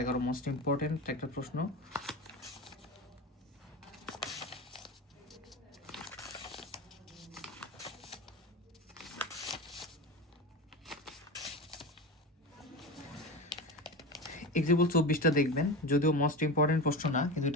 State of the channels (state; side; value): normal; both; correlation 0.25